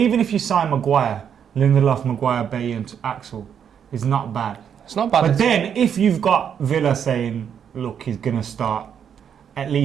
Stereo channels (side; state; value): left; quieter; 8.1 dB